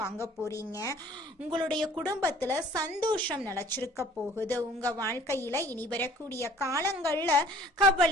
வாங்க போறீங்க. உங்களுடைய குடும்பத்துல சந்தோஷம் நிலைச்சிருக்க போகுது. உங்க வாழ்க்கையில இனி வரக்கூடிய காலங்கள்ல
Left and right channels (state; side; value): normal; both; correlation 0.52